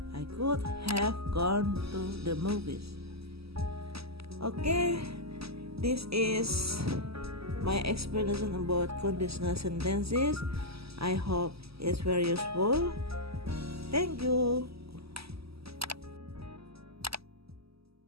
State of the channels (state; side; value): late; left; 0.77 ms